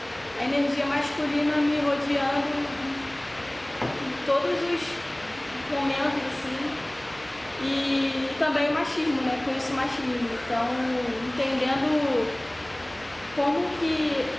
a energia masculina me rodeando todos os momentos, assim, e também o machismo, né? Conheço o machismo, então entendendo como que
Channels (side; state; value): right; noise; hum, 24 dB below the sound